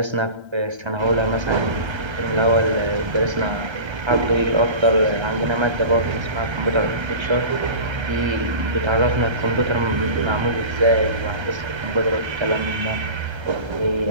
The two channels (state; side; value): late; left; 1.3 ms